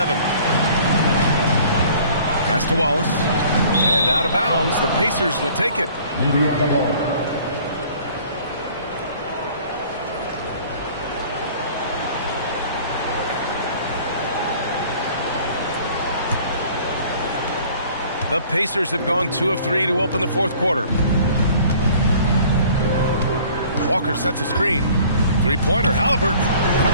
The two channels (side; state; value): both; inverted; correlation -0.52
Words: Pass to Wallace. And out of bounds, the Pacers will take it. The Pacers have gone 2 of 3 to open the fourth quarter. Walker sets a screen. Three-pointer, Halliburton.